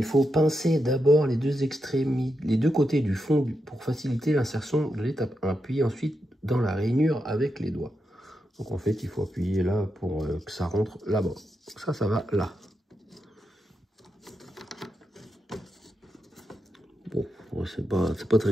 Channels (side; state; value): both; normal; correlation 0.86